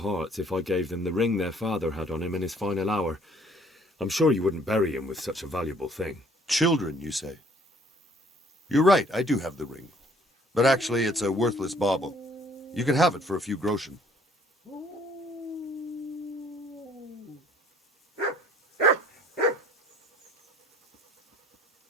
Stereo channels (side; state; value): both; normal; correlation 0.59